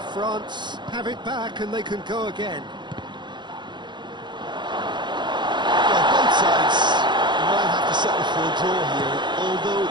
France have it back and they can go again. Sides might have to settle for a draw here, although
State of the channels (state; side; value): late; left; 0.22 ms